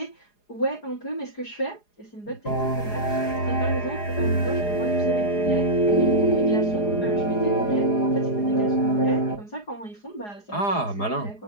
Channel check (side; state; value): right; late; 4.8 ms